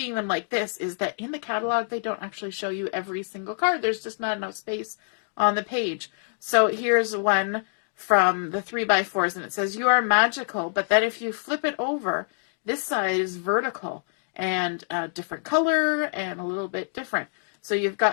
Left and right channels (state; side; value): silent; right; digital silence